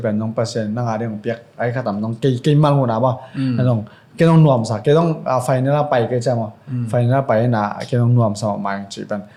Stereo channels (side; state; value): both; identical; correlation 1.00